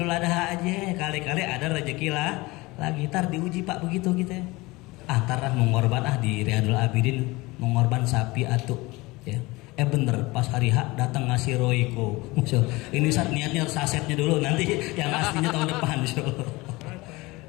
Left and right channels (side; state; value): right; quieter; 22.2 dB